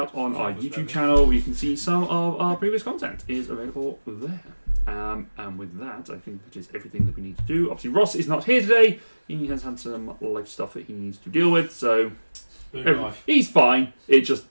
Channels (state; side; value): inverted; both; correlation -1.00